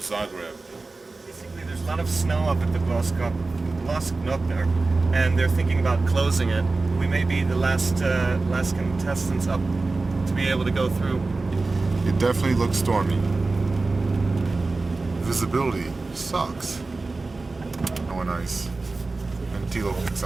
Basically, there's a lot of snow up at the Glasknot there, and they're thinking about closing it. We may be the last contestants up to be able to go through. It definitely looks stormy. Visibility sucks. Oh, nice. And Thilo picks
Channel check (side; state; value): left; quieter; 3.6 dB